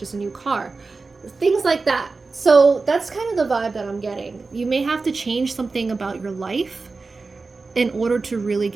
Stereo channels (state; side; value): quieter; left; 4.0 dB